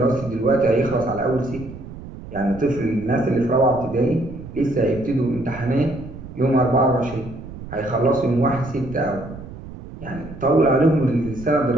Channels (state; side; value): noise; right; rumble, 13 dB below the sound